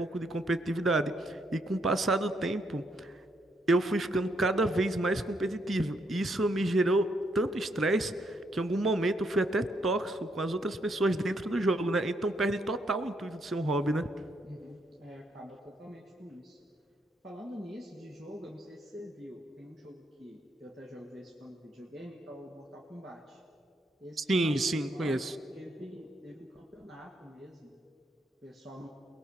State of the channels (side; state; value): both; normal; correlation 0.75